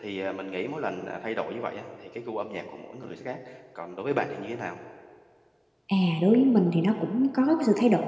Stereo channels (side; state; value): both; identical; correlation 1.00